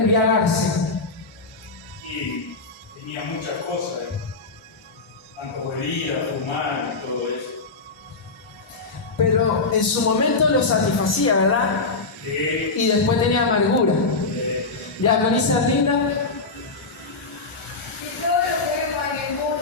Y tenía muchas cosas, tanto bebida, fumar y todo eso. Pero en su momento lo satisfacía, ¿verdad? Sí. Y después tenía amargura. ¿Ya con esa linda? Y todo lo que vemos en el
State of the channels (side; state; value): right; quieter; 3.8 dB